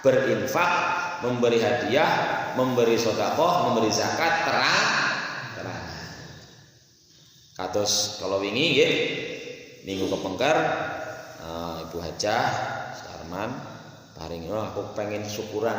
memberi hadiah, memberi sedekah, memberi zakat terang. Kados kalau wingi nggih, minggu kepengker Ibu Hajah Sarman paring, aku pengen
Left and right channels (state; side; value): identical; both; correlation 1.00